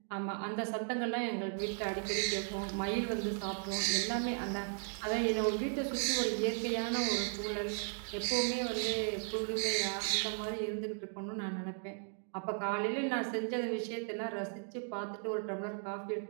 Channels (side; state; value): left; silent; 54 dB below the other